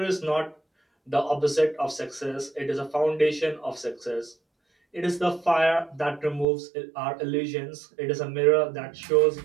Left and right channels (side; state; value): left; drops out; at 6.5 s